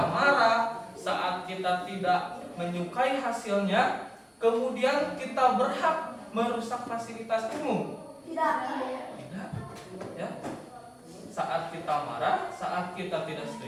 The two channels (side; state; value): both; identical; correlation 1.00